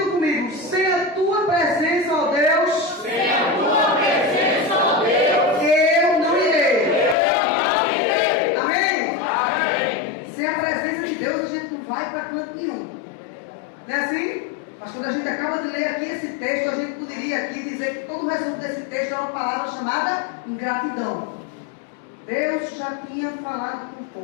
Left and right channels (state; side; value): drops out; right; at 7.2 s